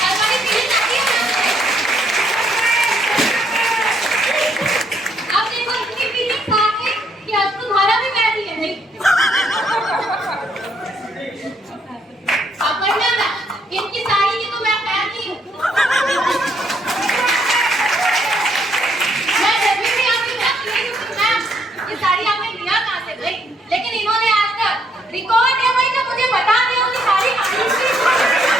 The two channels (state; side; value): normal; both; correlation 0.71